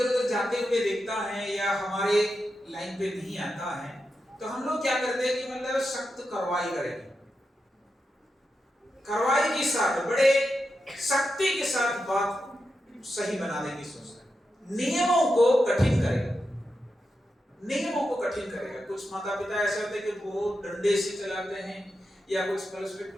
उधर जाते हुए देखता है या हमारे लाइन पे नहीं आता है, तो हम लोग क्या करते हैं कि मतलब सख्त कार्रवाई करेंगे, कार्रवाई के साथ, बड़े सख्ती के साथ बात सही बनाने की सोचते हैं, नियमों को कठिन करेगा, नियमों को कठिन करेगा। कुछ माता पिता ऐसे होते हैं कि बहुत डंडे से चलाते हैं, या कुछ पर्सपेक्ट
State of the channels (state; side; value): normal; both; correlation 0.88